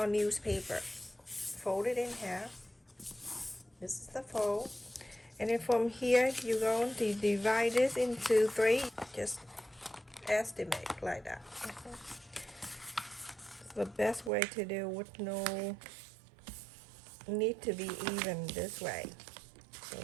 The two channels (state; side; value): drops out; left; at 14.3 s